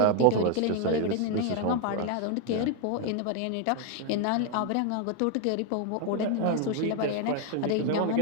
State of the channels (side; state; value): both; different; correlation 0.01